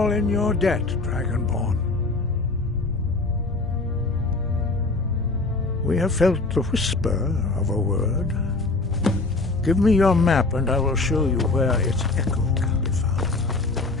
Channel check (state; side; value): quieter; right; 3.4 dB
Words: in your debt, Dragonborn. We have felt the whisper of a word. Give me your map and I will show you where its echo can be found.